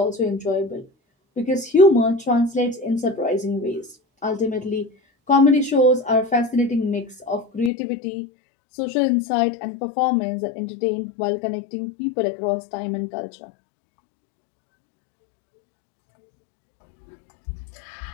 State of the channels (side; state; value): right; drops out; at 7.7 s